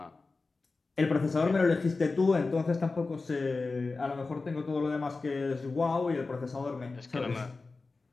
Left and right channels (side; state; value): right; quieter; 3.8 dB